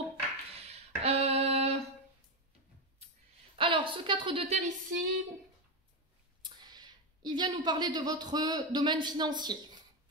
Alors, ce 4 de terre ici, il vient nous parler de votre domaine financier.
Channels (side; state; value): both; normal; correlation 0.10